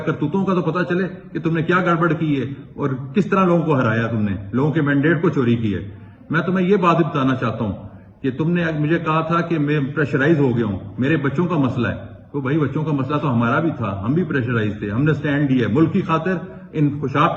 کرتوتوں کا تو پتہ چلے کہ تم نے کیا گڑبڑ کی ہے اور کس طرح لوگوں کو ہرایا، تم نے لوگوں کے مینڈیٹ کو چوری کی ہے۔ میں تمہیں یہ بات بھی بتانا چاہتا ہوں کہ تم نے مجھے کہا تھا کہ میں پریشرائز ہو گیا ہوں، میرے بچوں کا مسئلہ ہے، تو بھائی بچوں کا مسئلہ تو ہمارا بھی تھا، ہم بھی پریشرائز تھے، ہم نے سٹینڈ لیا ملک کی خاطر، ان خوشاب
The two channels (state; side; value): identical; both; correlation 1.00